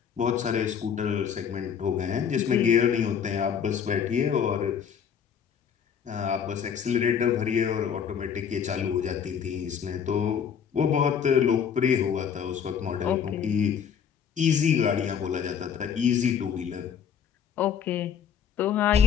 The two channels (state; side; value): quieter; right; 7.7 dB